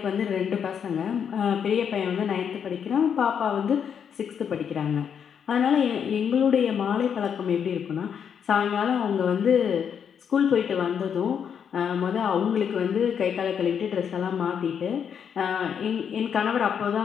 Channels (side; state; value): right; quieter; 7.7 dB